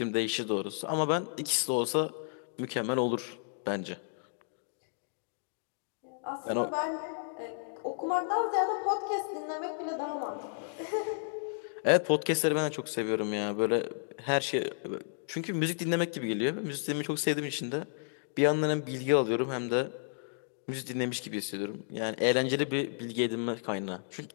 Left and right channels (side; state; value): right; silent; digital silence